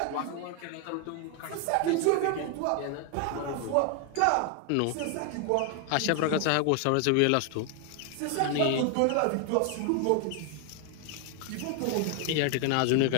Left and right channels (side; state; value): both; different; correlation 0.00